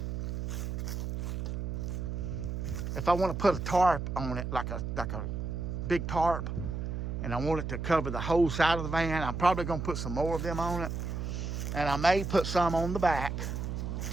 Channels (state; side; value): noise; right; hum, 3 dB below the sound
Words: if I want to put a tarp on it, like a big tarp, and I want it to cover the whole side of the van, I'm probably going to put some more of them on it, and I may put some on the back